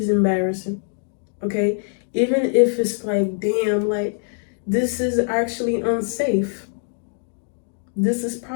embarrassing, okay? Even if it's like, damn, like, this is actually unsafe. This is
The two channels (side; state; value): right; silent; digital silence